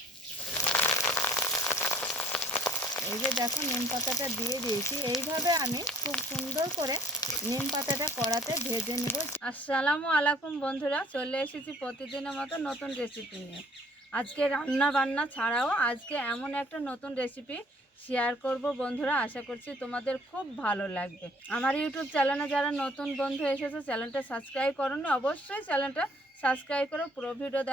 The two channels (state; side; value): normal; both; correlation 0.57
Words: এই যে দেখো নিম পাতাটা দিয়ে দিয়েছি। এইভাবে আমি খুব সুন্দর করে নিম পাতাটা কড়াতে ভেজে নিব। আসসালামু আলাইকুম বন্ধুরা, চলে এসেছি প্রতিদিনের মতো নতুন রেসিপি নিয়ে। আজকে রান্না বান্না ছাড়াও আজকে এমন একটা নতুন রেসিপি শেয়ার করব বন্ধুরা। আশা করছি তোমাদের খুব ভালো লাগবে। আমার ইউটিউব চ্যানেলে যারা নতুন বন্ধু এসেছে, চ্যানেলটা সাবস্ক্রাইব করোনি, অবশ্যই চ্যানেলটা সাবস্ক্রাইব করো। পুরো ভিডিও